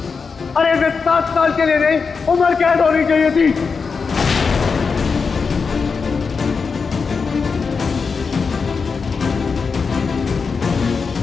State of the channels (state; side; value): quieter; right; 5.2 dB